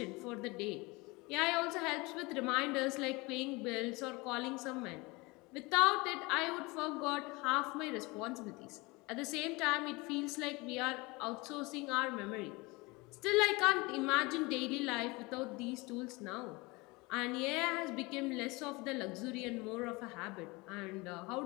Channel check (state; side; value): quieter; right; 24.6 dB